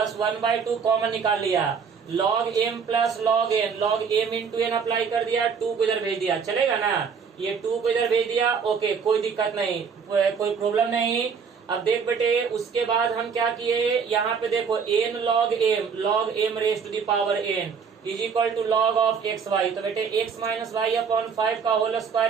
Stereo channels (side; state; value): left; quieter; 6.2 dB